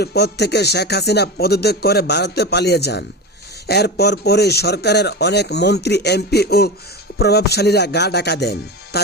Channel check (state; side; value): normal; both; correlation 0.23